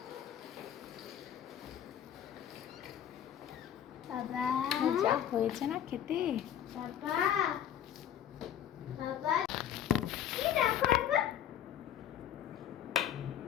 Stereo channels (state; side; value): quieter; right; 10.5 dB